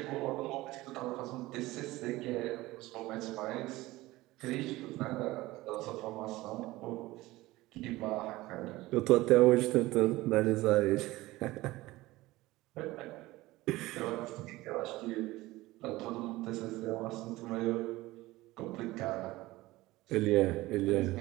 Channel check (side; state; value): left; quieter; 18.7 dB